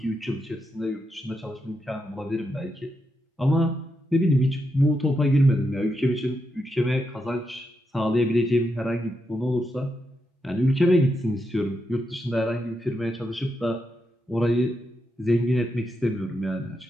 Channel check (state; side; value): normal; both; correlation 0.84